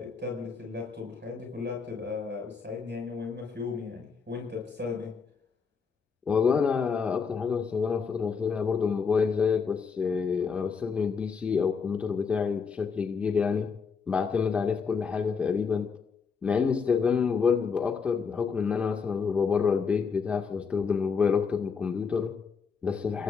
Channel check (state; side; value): quieter; right; 5.7 dB